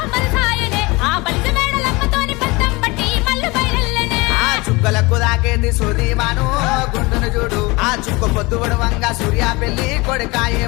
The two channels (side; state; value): right; quieter; 24.3 dB